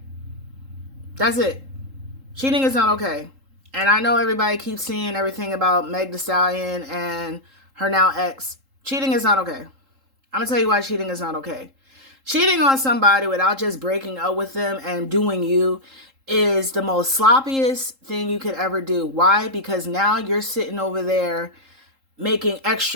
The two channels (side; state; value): left; late; 3.8 ms